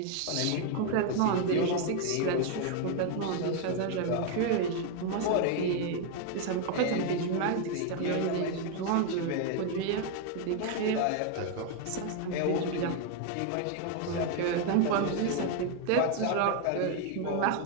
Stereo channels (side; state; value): both; different; correlation 0.01